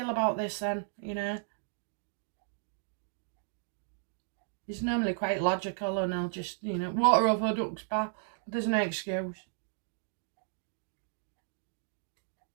about this then, you know? He's normally quite logical and he'll just, you know, water over duck's back. There's no excuse.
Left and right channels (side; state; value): left; silent; digital silence